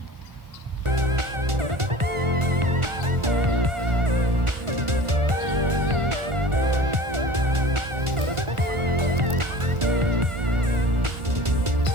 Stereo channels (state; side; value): late; left; 1.4 ms